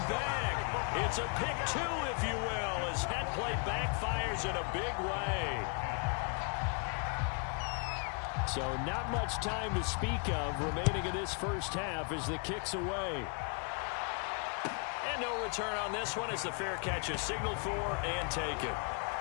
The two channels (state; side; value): quieter; right; 38.4 dB